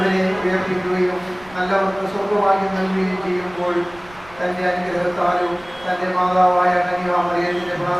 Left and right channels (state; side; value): noise; right; rumble, 23 dB below the sound